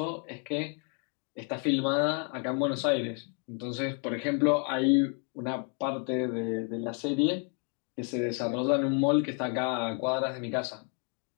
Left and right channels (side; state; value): right; quieter; 39.0 dB